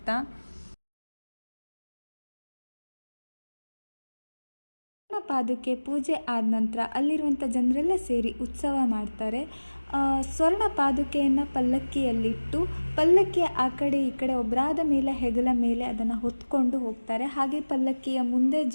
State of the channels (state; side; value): inverted; both; correlation -1.00